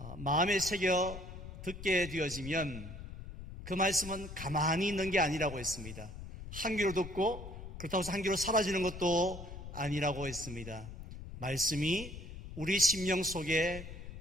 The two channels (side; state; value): left; noise; rumble, 11 dB below the sound